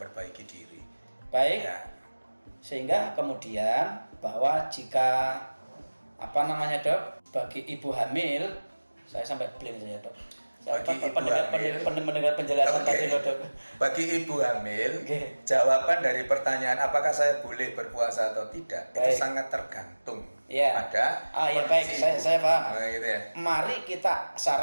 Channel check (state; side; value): inverted; both; correlation -1.00